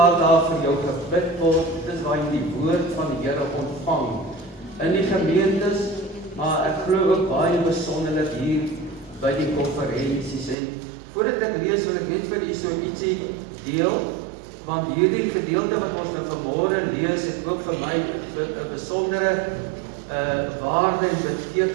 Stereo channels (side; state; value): left; drops out; at 10.6 s